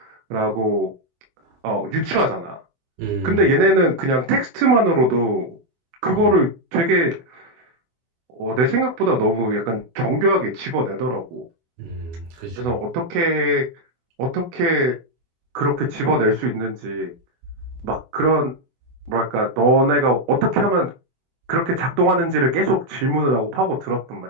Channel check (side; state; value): left; late; 24 ms